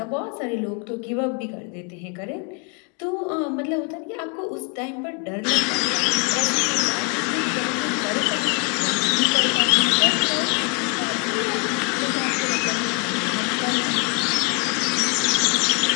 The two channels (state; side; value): quieter; right; 33.7 dB